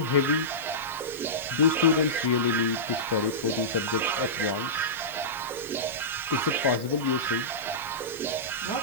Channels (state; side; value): noise; right; hiss, 18 dB below the sound